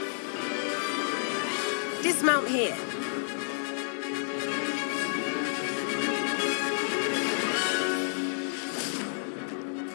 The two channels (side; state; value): right; silent; digital silence